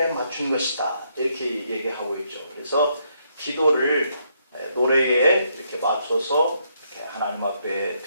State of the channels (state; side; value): inverted; both; correlation -0.74